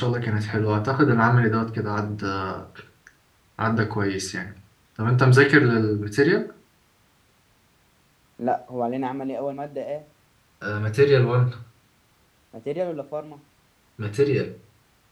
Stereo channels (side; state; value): both; identical; correlation 1.00